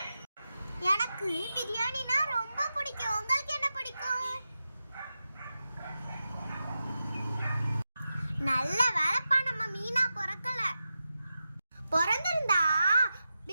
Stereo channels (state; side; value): inverted; both; correlation -0.91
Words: எனக்கு பிரியாணினா ரொம்ப பிடிக்கும். உங்களுக்கு என்ன பிடிக்கும்? நல்ல வேலைப்பா, நம்ம மீனா பிறக்கல. பிறந்திருந்தா